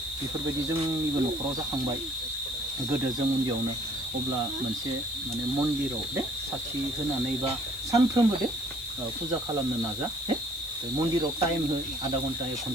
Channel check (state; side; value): noise; left; hiss, 15 dB below the sound